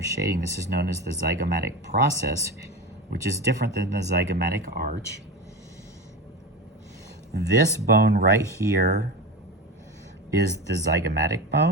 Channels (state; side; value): normal; both; correlation 0.25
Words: shading. This is known as the zygomatic process, which is different than the zygomatic arch. This bone right here is the zygomatic